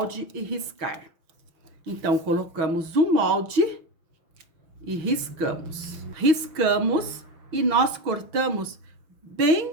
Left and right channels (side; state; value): left; late; 6.3 ms